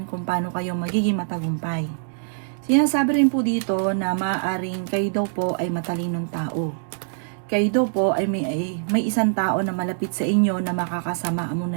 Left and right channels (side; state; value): left; silent; 63 dB below the other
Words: kung paano kayo magiging matagumpay. Sinasabi rin po dito na maaaring kayo daw po ay matalinong tao. Kayo daw po ay may isang tao na malapit sa inyo na makakasama mo